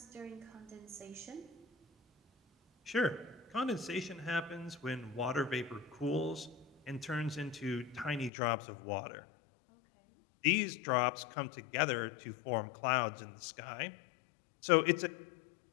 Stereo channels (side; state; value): right; drops out; at 8.3 s